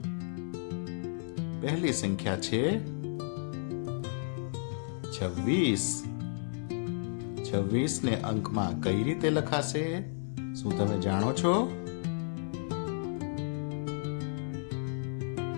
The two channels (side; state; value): right; silent; 56 dB below the other